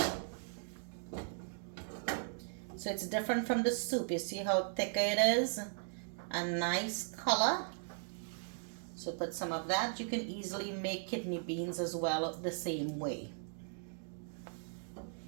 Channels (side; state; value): left; silent; digital silence